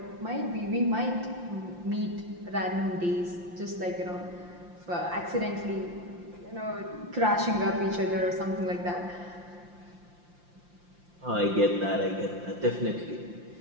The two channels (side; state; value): left; late; 5.7 ms